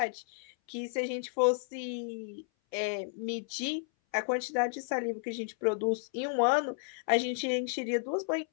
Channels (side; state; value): right; silent; 56 dB below the other